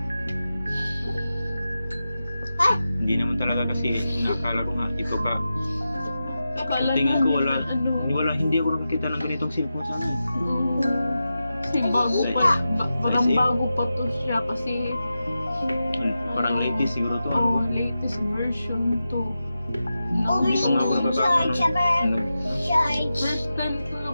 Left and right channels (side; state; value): both; inverted; correlation -0.91